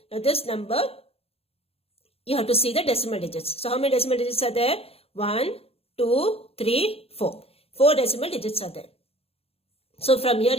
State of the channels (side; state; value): right; late; 0.29 ms